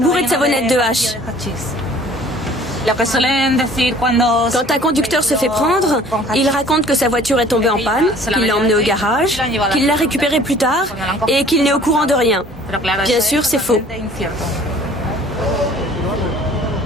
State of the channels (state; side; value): normal; both; correlation 0.51